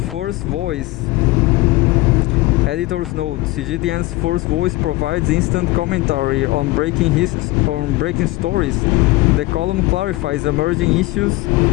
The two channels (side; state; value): right; quieter; 19.9 dB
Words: First Voice. Editor's note: CGTN's First Voice provides instant commentary on breaking stories. The column clarifies emerging issues